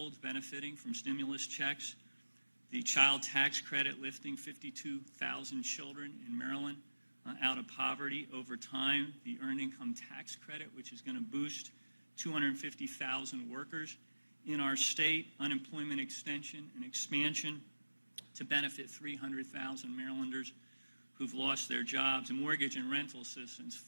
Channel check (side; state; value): both; inverted; correlation -1.00